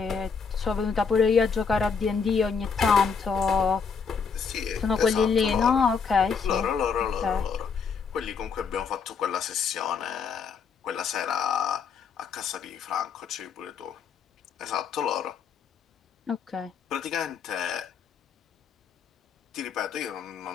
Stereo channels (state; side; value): quieter; right; 5.8 dB